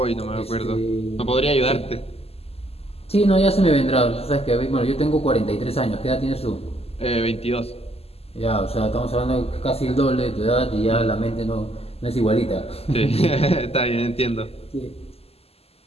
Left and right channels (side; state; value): right; late; 0.29 ms